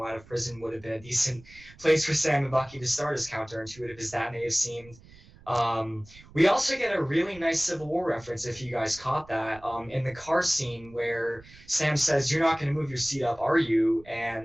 out of prison would have been a decent place for Sam and Bucky to start, as counterintuitive as that may have seemed. We also get a really nice Civil War reference, if you guys caught that, in the car scene where Sam says, "You're not going to move your seat up, are you?"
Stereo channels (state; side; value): noise; right; rumble, 23 dB below the sound